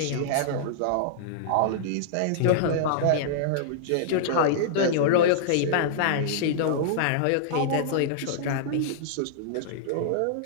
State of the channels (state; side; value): different; both; correlation -0.02